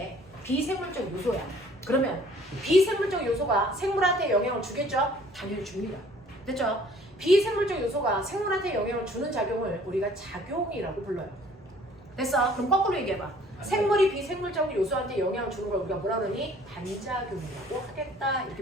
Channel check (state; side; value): normal; both; correlation 0.55